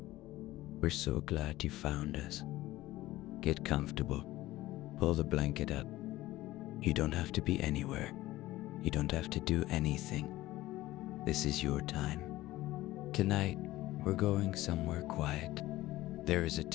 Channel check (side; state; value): right; quieter; 16.9 dB